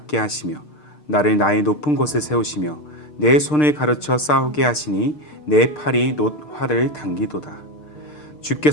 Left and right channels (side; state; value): right; late; 6.6 ms